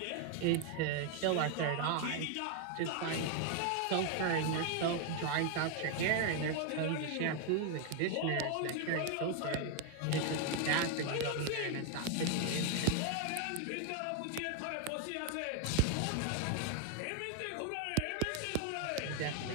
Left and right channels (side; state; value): both; different; correlation 0.00